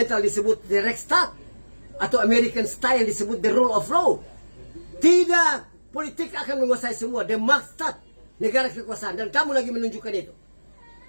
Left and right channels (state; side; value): inverted; both; correlation -1.00